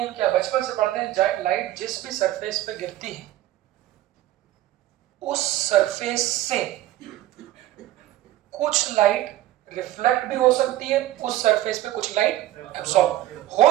क्या, बचपन से पढ़ते हैं लाइट जिस भी सरफेस पे गिरती है उस सरफेस से कुछ लाइट रिफ्लेक्ट भी हो सकती है, उस सरफेस पे कुछ लाइट एब्सॉर्ब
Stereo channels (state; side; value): quieter; left; 14.5 dB